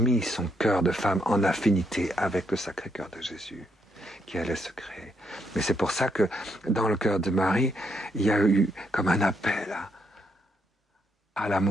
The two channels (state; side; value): normal; both; correlation 0.76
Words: son cœur de femme en affinité avec le Sacré-Cœur de Jésus, qui allait se créer. Mais c'est pour ça que dans le cœur de Marie, il y a eu comme un appel à